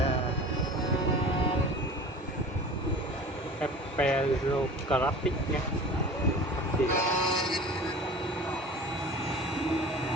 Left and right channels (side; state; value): both; normal; correlation 0.40